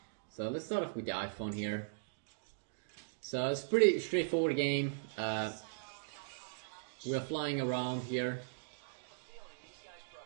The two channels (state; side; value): silent; left; digital silence